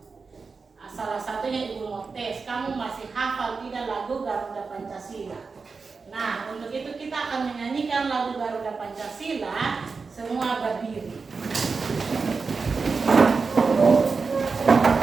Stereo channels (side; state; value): left; quieter; 4.7 dB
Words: Salah satunya Ibu mau tes, kamu masih hafal tidak lagu Garuda Pancasila? Nah, untuk itu kita akan menyanyikan lagu Garuda Pancasila. Semua berdiri.